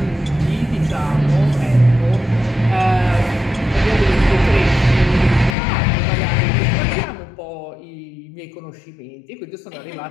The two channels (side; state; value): right; drops out; at 5.6 s